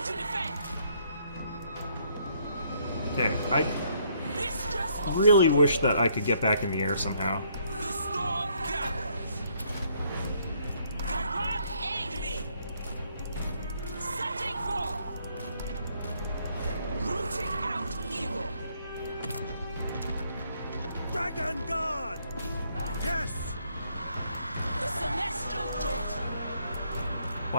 to defend! Okay, I Mistress of really wish that I could get back in the air somehow. the storm gathers! Gyrod, aid me! Setting forth! Rooting out evil! Dragon Guard! Yes! The Celestial Daughter!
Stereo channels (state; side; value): inverted; both; correlation -0.68